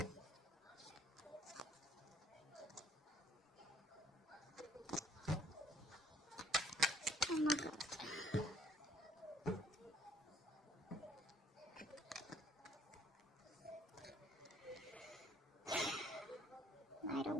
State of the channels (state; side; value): normal; both; correlation 0.61